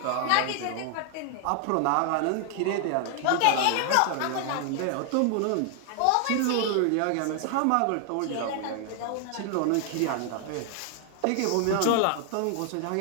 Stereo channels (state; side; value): different; both; correlation 0.00